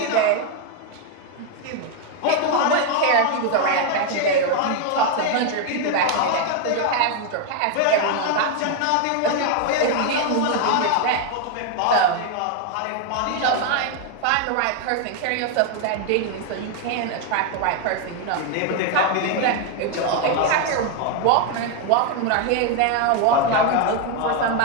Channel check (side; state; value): both; different; correlation 0.01